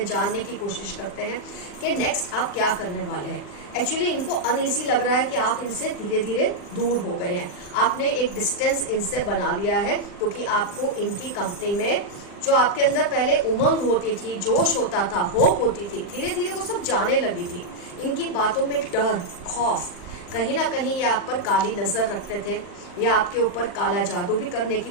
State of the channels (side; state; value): right; late; 40 ms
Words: जानने की कोशिश करते हैं कि नेक्स्ट आप क्या करने वाले हैं। एक्चुअली इनको अनईजी लग रहा है कि आप इनसे धीरे धीरे दूर हो गए हैं, आपने एक डिस्टेंस इनसे बना लिया है, क्योंकि आपको इनकी कंपनी में जो आपके अंदर पहले उमंग होती थी, जोश होता था, होप होती थी, धीरे धीरे वो सब जाने लगी थी। इनकी बातों में डर, खौफ, कहीं ना कहीं ये आप पर काली नजर रखते थे, या आपके ऊपर काला जादू भी करने की